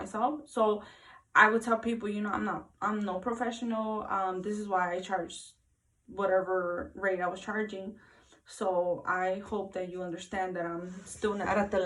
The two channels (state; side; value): identical; both; correlation 1.00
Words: So I would tell people, you know, I'm no professional. This is why I charged whatever rate I was charging. So I hope that you understand that I'm still not at the